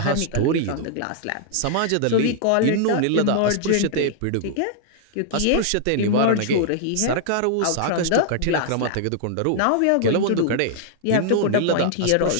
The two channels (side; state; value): both; different; correlation -0.01